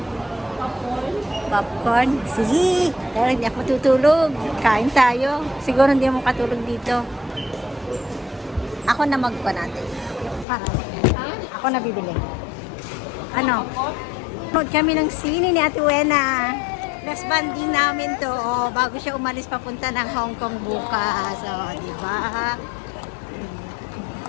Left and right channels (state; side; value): drops out; right; at 10.5 s